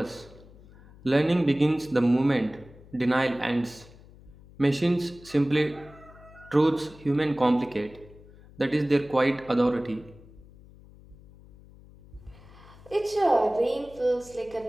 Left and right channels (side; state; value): left; noise; hum, 22 dB below the sound